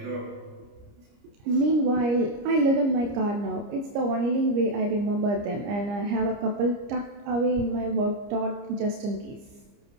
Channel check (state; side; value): late; left; 30 ms